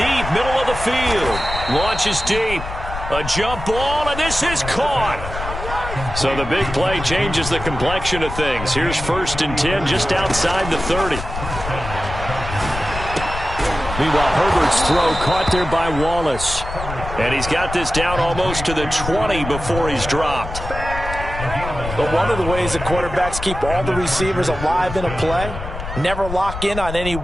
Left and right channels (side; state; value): left; noise; rumble, 8 dB below the sound